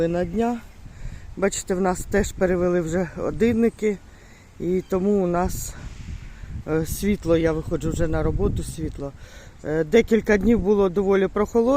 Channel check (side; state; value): both; identical; correlation 1.00